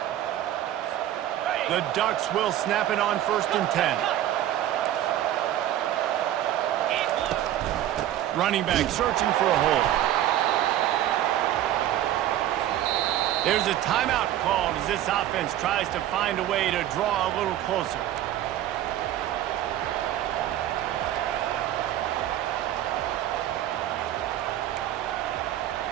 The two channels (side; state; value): left; quieter; 12.5 dB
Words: The Ducks will snap it on 1st and 10. Running back searching for a hole. There's a timeout called as this offense tries to find a way to draw a little closer.